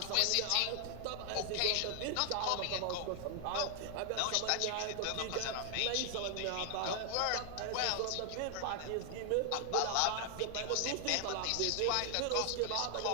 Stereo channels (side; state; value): both; different; correlation 0.00